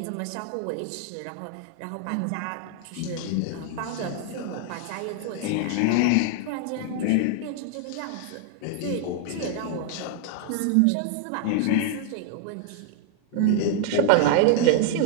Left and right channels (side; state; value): both; different; correlation 0.00